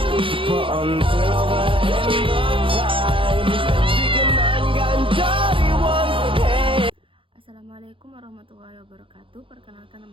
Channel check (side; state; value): left; late; 0.25 ms